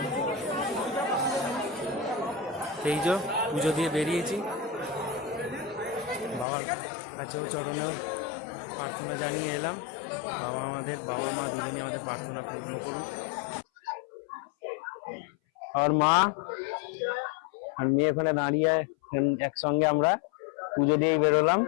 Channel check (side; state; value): right; drops out; at 6.5 s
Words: এই যে পুজো দিয়ে বেরিয়েছি, বাবার কাছেও চরণেও প্রার্থনা জানিয়ে এলাম। বাবা মা দুজনই আমাদের প্রার্থনা পূর্ণ করুক। আর মা আর মেয়ে ওখানে দাঁড়িয়ে একসঙ্গে আমরা পুজো দিয়েই বেরোলাম।